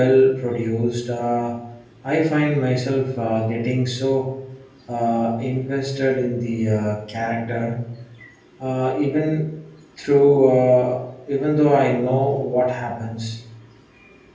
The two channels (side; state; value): both; identical; correlation 1.00